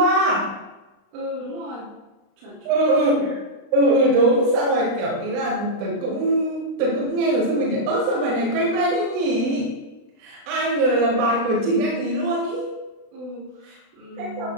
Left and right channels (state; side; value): late; left; 35 ms